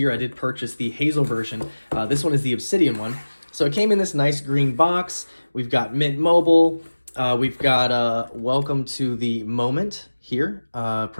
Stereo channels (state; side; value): inverted; both; correlation -1.00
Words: I did purchase the Hazel version. This one is the Obsidian one. So it came in this nice green box. We've got Mint Mobile. We've got welcome to the moment here.